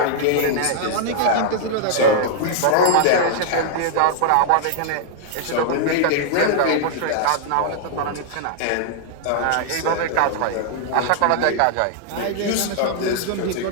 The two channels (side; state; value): both; different; correlation -0.01